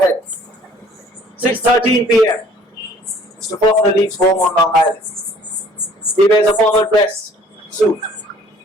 6:13 p.m. Mr. Faulkner leaves home on Long Island. He wears a formal dress suit.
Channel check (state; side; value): normal; both; correlation 0.55